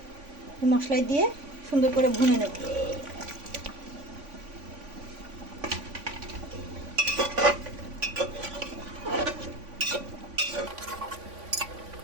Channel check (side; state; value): left; late; 3.5 ms